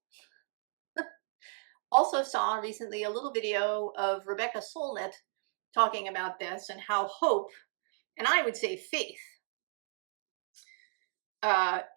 also saw recently a little video of Rebecca Solnit talking about this and how hope, and I would say faith,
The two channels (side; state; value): left; silent; digital silence